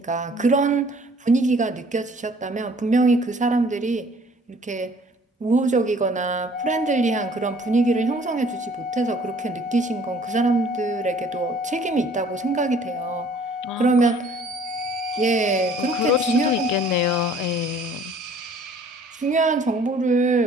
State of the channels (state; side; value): normal; both; correlation 0.55